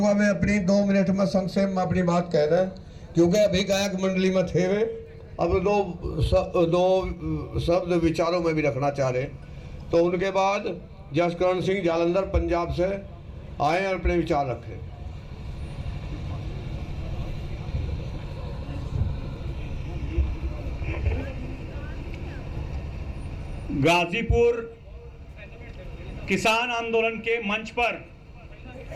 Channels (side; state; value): both; identical; correlation 1.00